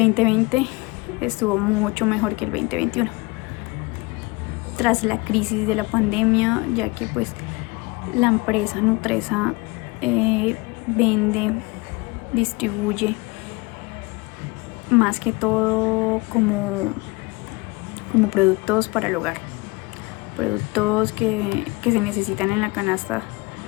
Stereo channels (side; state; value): right; quieter; 24.5 dB